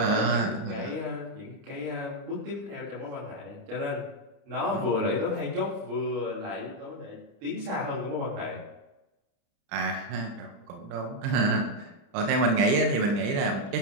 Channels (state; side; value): late; left; 30 ms